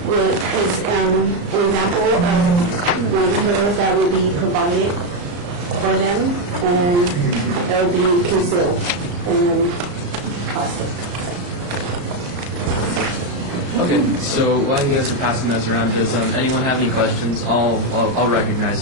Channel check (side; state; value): left; late; 34 ms